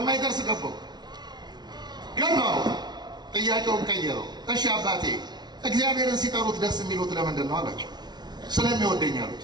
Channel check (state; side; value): late; left; 0.20 ms